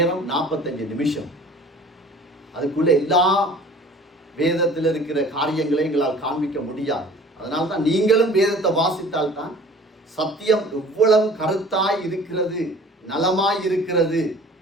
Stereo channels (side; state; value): both; normal; correlation 0.47